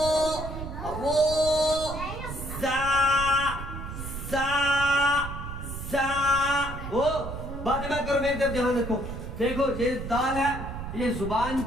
रो, जा जा जा। ओ बाद में करो, मेरी तरफ ध्यान रखो। देखो ये दाल है, ये जुबान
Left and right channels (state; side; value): noise; right; rumble, 8 dB below the sound